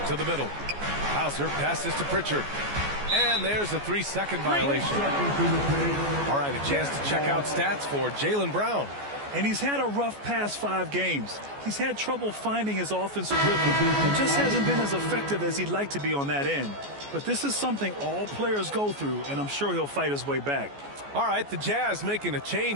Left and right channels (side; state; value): left; late; 14 ms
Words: To the middle. Hauser passes to Pritchard. And there's a 3-second violation. All right, a chance to check out stats for Jaylen Brown. And he's had a rough past 5 games. He's had trouble finding his offensive rhythm and just hasn't been as effective as he'd like to be on that end. But this is something all players go through, and I'm sure he'll fight his way back. All right, the Jazz making a